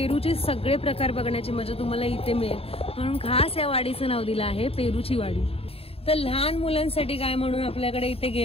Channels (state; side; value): late; right; 0.28 ms